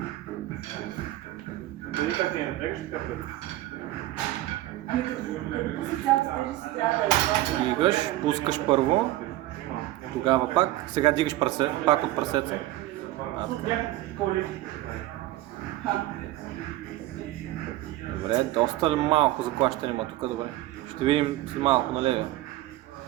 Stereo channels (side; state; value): left; quieter; 16.0 dB